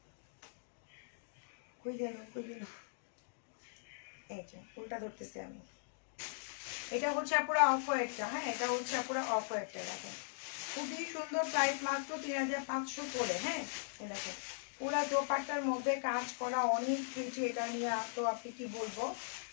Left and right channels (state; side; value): silent; right; digital silence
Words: কই গেল, এই যে উল্টা ধরতেছি আমি। এটা হচ্ছে পুরো অফ হোয়াইটটা, হ্যাঁ এটা হচ্ছে পুরো অফ হোয়াইটটা, দেখেন খুবই সুন্দর, প্রাইস মাত্র 3500 করে। হ্যাঁ দেখেন পুরা দোপাট্টার মধ্যে কাজ করা, অনেক কিছু, এটা নিয়ে তো আপনি কি বলবো,